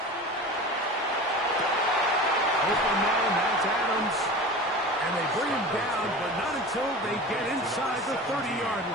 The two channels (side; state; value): both; normal; correlation 0.34